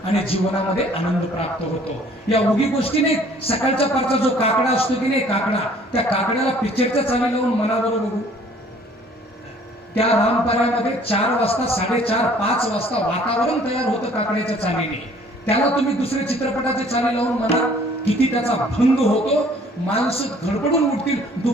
आणि जीवनामध्ये आनंद प्राप्त होतो. या उगी गोष्टी नाही. सकाळच्या पारचा जो काकडा असतो की नाही, काकडा, त्या काकड्याला पिक्चरच्या चाली लावून मनाबरोबर बघू. त्या रामपाऱ्यामध्ये 4 वाजता 4:30 5 वाजता वातावरण तयार होतं काकड्याच्या चालीने. त्याला तुम्ही दुसरे चित्रपटाचे चाली लावून म्हणा किती त्याचा भंग होतो. माणसं धडपडून उठतील.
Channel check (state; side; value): normal; both; correlation 0.56